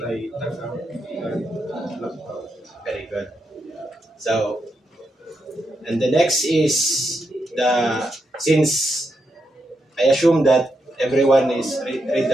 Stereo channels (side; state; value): both; normal; correlation 0.83